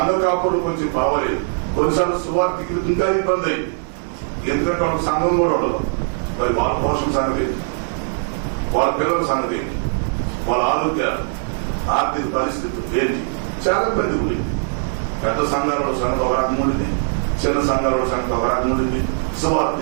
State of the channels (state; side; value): silent; left; digital silence